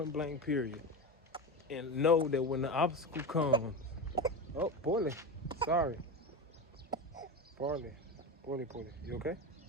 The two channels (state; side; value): normal; both; correlation 0.22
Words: blank, period. And know that when the obstacle comes, oh, Poorly, sorry. Poorly, you okay?